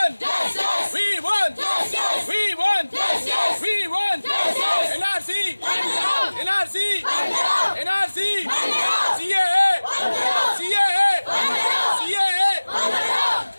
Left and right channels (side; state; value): both; inverted; correlation -1.00